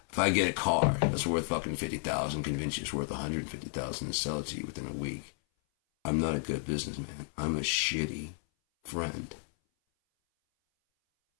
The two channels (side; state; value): right; silent; 56 dB below the other